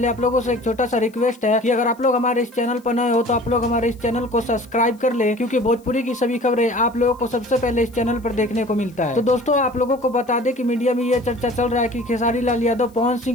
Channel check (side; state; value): left; noise; hiss, 30 dB below the sound